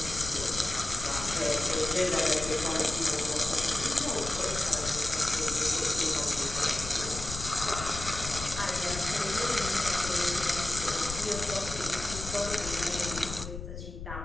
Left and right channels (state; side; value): noise; left; rumble, 9 dB below the sound